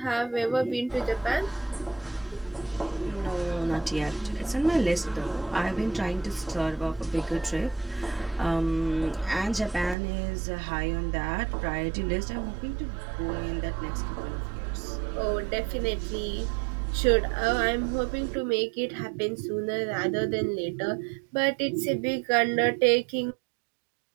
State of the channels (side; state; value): left; drops out; at 10.0 s